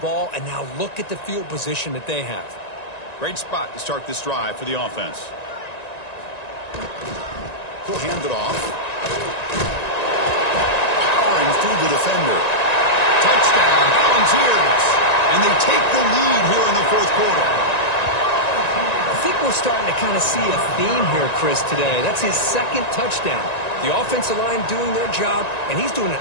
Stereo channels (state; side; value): late; right; 1.9 ms